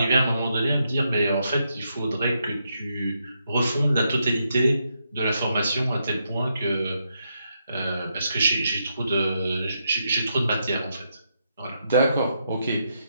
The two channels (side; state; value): both; inverted; correlation -0.81